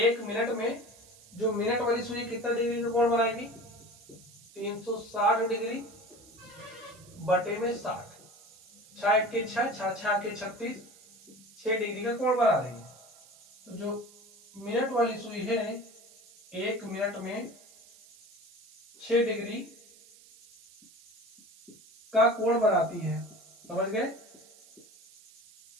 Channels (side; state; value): right; noise; hiss, 24 dB below the sound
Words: मिनट में जो मिनट वाली सुई कितना डिग्री का कोण बनाएगी, 360 डिग्री बटे में 60, 6 के 6, 6 के 36, 6 डिग्री का कोण बना रही है। तो जो मिनट वाली सुई है 1 मिनट में 6 डिग्री का कोण बनाती है। समझ गए,